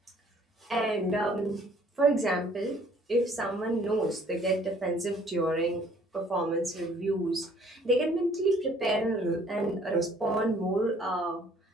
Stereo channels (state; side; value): normal; both; correlation 0.58